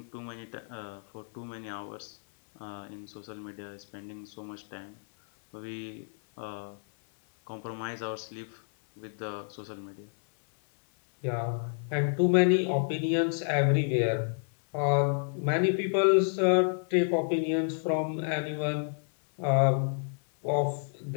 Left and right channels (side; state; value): right; silent; 57 dB below the other